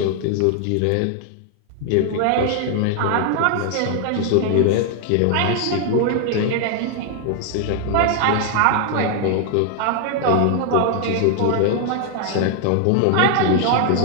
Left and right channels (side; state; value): both; different; correlation 0.00